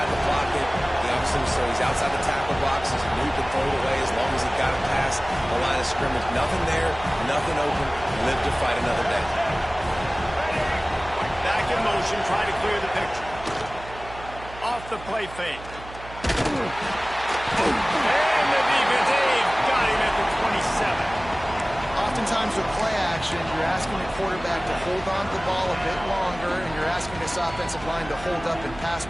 the pocket. He obviously, so he's outside the tackle box. He knew he could throw it away as long as he got it past the line of scrimmage. Nothing there, nothing open. Live to fight another day. Back in motion, try to clear the picture. Off the play fake. And the defense, they've got him at the 27. Oftentimes with play action, you're asking the quarterback to hold on to the ball a bit longer, and you're asking this offensive line to hold up and pass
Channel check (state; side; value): noise; right; hum, 16 dB below the sound